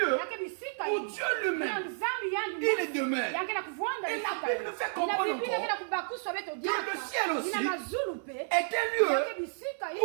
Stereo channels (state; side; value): silent; left; 57 dB below the other